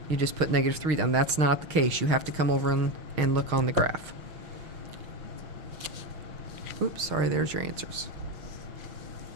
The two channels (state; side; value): late; left; 6.4 ms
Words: you just put negative 3 down. That's not the case. You have to come over and look on the graph. Oops, sorry, there's your answers.